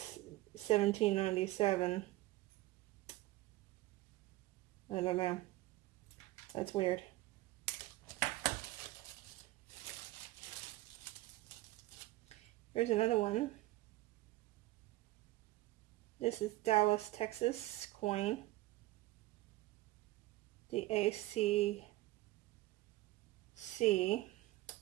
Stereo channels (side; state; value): left; quieter; 17.9 dB